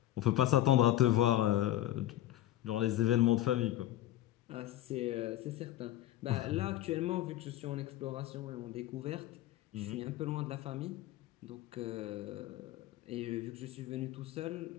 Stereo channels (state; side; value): quieter; right; 13.8 dB